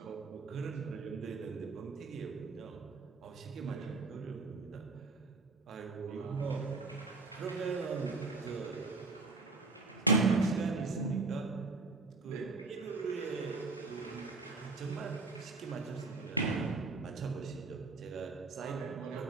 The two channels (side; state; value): left; quieter; 3.8 dB